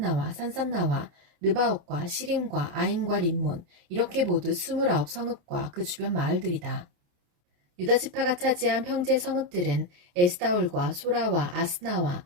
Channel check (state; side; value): late; left; 28 ms